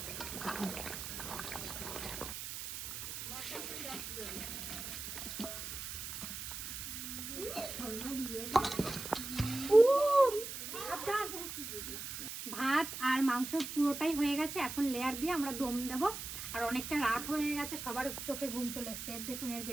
ভাত আর মাংস পুরোটাই হয়ে গেছে, এখন লেয়ার দিয়ে আমরা দম দেব। আর অনেকটা রাত হয়ে গেছে, সবার চোখে ঘুম চলে এসছে। দেখুন এর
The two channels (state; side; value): noise; right; hiss, 7 dB below the sound